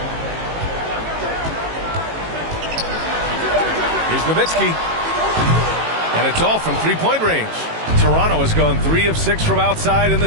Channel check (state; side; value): late; left; 18 ms